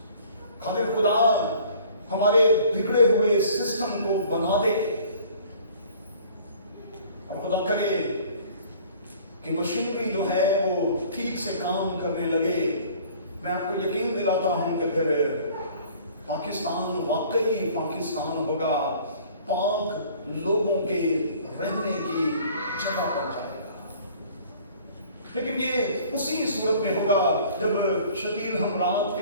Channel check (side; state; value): both; inverted; correlation -0.51